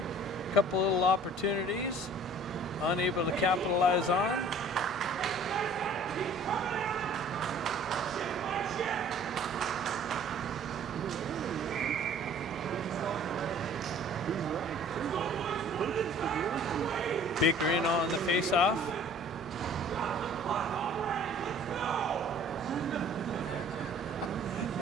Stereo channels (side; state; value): both; normal; correlation 0.51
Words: A couple little opportunities. Unable to capitalize on. Baker in on the face-off.